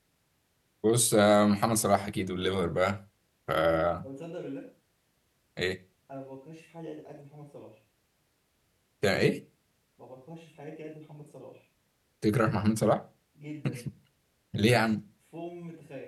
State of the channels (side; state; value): both; identical; correlation 1.00